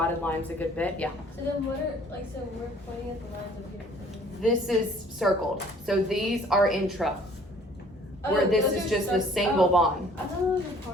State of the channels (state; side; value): normal; both; correlation 0.55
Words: lines a good bit. Yeah. So then what are, so we're pointing at the lines of here. This is circled. So these are intra. Where this is just the single bond. I thought those were